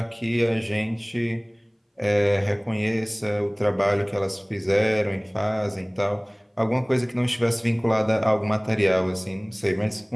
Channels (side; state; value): both; identical; correlation 1.00